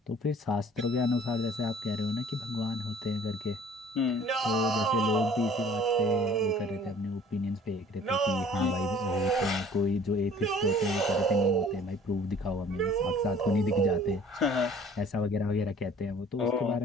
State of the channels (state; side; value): normal; both; correlation 0.52